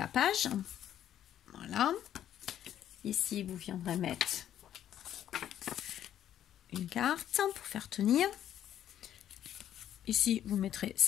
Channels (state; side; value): quieter; right; 10.9 dB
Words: page, voilà. Ici, vous viendrez mettre une carte pour faire tenir. Ici, vous mettrez